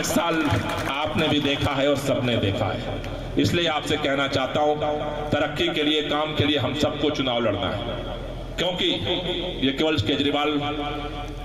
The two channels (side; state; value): both; identical; correlation 1.00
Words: साल आपने भी देखा है और सबने देखा है। इसलिए आपसे कहना चाहता हूं, तरक्की के लिए, काम के लिए हम सबको चुनाव लड़ना है, क्योंकि ये केवल केजरीवाल